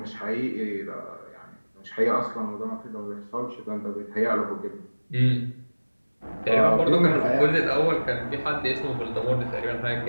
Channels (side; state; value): both; inverted; correlation -1.00